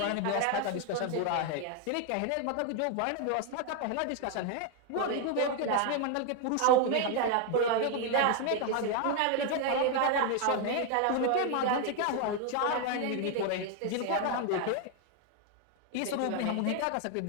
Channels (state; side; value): different; both; correlation 0.01